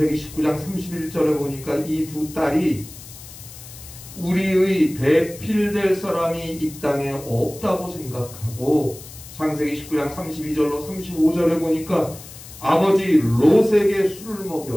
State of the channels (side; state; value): left; noise; hiss, 16 dB below the sound